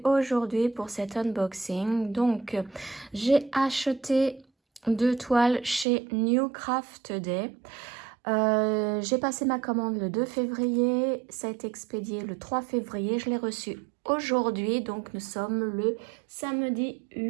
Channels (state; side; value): drops out; left; at 5.9 s